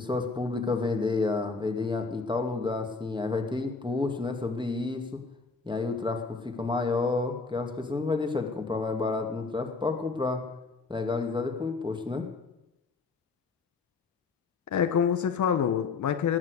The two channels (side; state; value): right; quieter; 4.4 dB